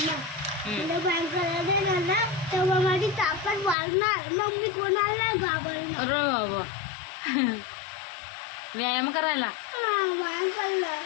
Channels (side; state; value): right; drops out; at 3.8 s